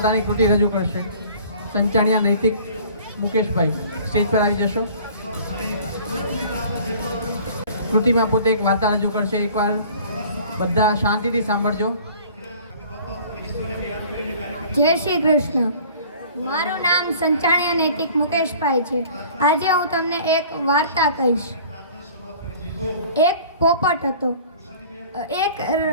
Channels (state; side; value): inverted; both; correlation -0.49